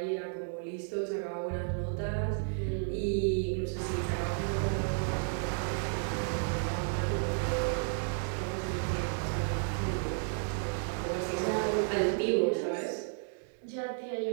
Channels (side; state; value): left; silent; 56 dB below the other